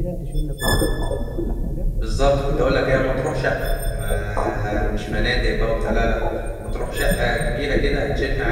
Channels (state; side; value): identical; both; correlation 1.00